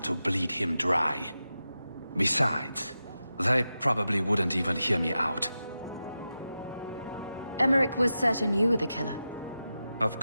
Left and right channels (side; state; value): both; inverted; correlation -0.91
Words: bleed him dry. Besides, they probably wouldn't even hear me out. Emmerich was certain you were the killer. Of